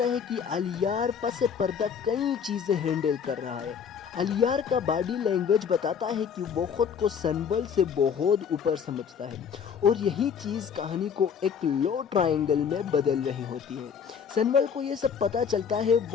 ہے کہ الیار پس پردہ کئی چیزیں ہینڈل کر رہا ہے۔ الیار کا باڈی لینگویج بتاتا ہے کہ وہ خود کو سنبل سے بہت اوپر سمجھتا ہے، اور یہی چیز کہانی کو ایک لو ٹرائنگل میں بدل رہی ہوتی ہے۔ سنبل کو یہ سب پتہ چلتا ہے،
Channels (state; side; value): quieter; right; 7.1 dB